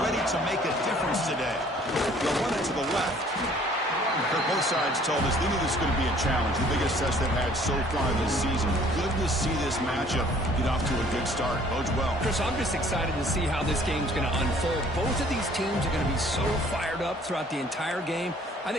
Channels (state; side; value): normal; both; correlation 0.56